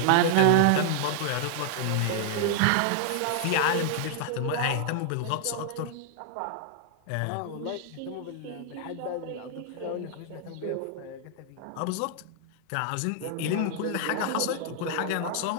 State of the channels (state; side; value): different; both; correlation 0.00